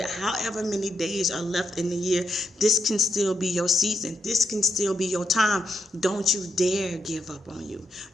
however many days are left in the year, this can still be your season. This can still be your time. Don't you dare give up on you.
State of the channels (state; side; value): normal; both; correlation 0.80